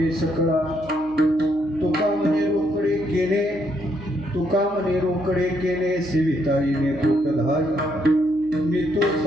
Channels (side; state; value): left; noise; hum, 23 dB below the sound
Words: सकळा तुका मने रोकडे केले सेविताईने पोटधाय मी तो